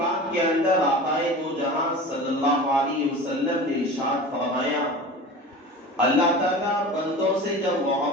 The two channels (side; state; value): both; normal; correlation 0.34